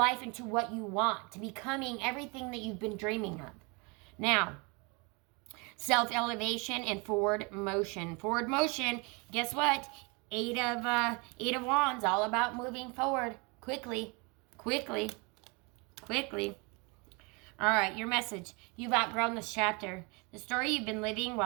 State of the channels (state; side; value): quieter; left; 29.9 dB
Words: into what you want, to becoming everything that you've been dreaming of. Now, self-elevation and forward motion. Forward motion, guess what? Eight of Wands, all about moving forward quickly, quickly, quickly. All right, your message. You've outgrown this chapter. The story you've been living,